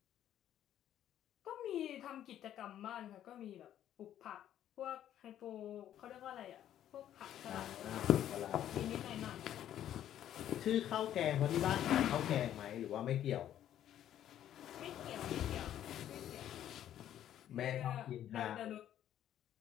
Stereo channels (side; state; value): right; quieter; 11.2 dB